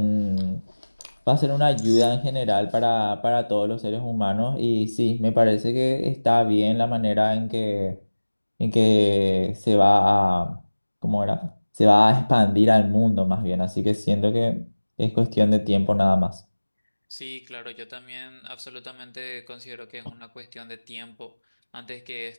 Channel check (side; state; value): both; inverted; correlation -1.00